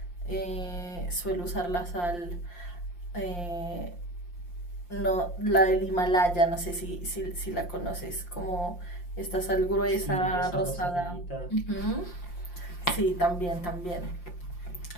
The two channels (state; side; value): late; right; 5.7 ms